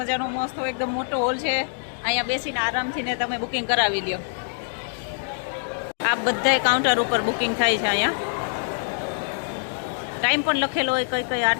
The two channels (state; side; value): silent; right; digital silence